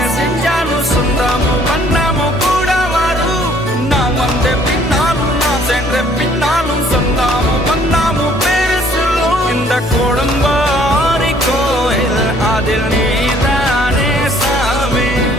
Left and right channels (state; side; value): normal; both; correlation 0.60